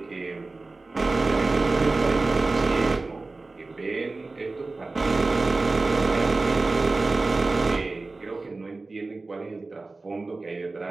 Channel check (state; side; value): quieter; left; 3.4 dB